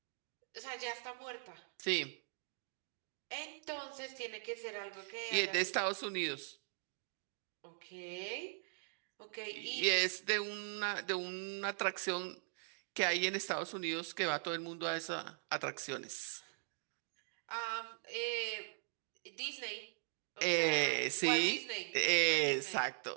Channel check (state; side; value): silent; left; digital silence